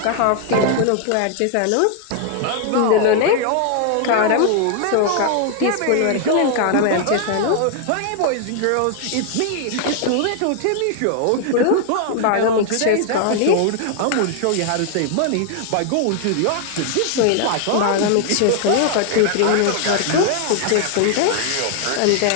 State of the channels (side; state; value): both; different; correlation 0.00